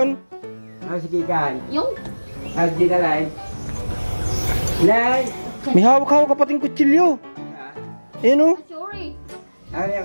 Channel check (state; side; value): inverted; both; correlation -1.00